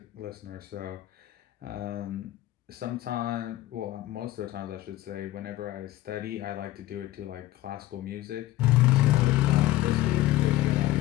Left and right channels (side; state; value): right; quieter; 15.8 dB